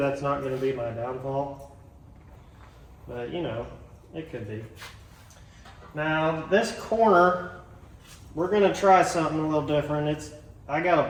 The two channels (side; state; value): both; identical; correlation 1.00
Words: not going to be my downfall. But you know, it could be. Now this corner, we're going to try something a little different. I got a